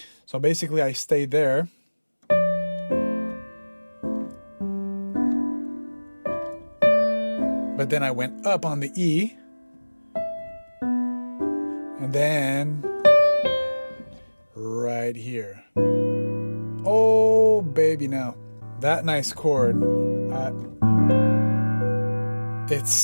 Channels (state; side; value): inverted; both; correlation -1.00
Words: basically I stayed there. But then I went up on the E, and then right here. Oh, baby, now that nice chord,